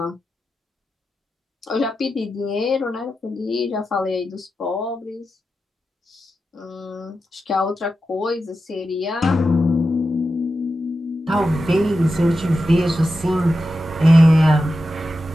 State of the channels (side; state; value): both; normal; correlation 0.90